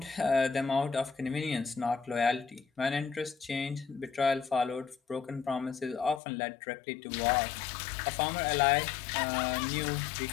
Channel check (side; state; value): right; drops out; at 6.2 s